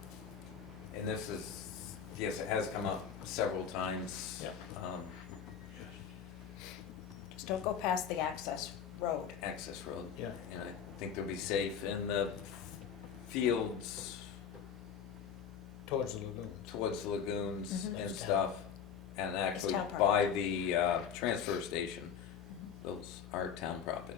And this is, yes, it has come up several times. Yeah. Just don't go past the access road. Access road. Yeah. And I think they'll be safe in the fields Towards the lagoon. towards the lagoons Mhm. and stuff. And actually town by the transfer station, those are town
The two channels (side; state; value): right; quieter; 7.7 dB